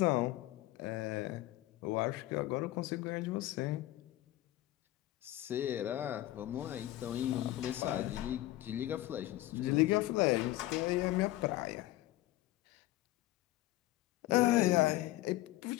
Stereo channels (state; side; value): quieter; right; 16.0 dB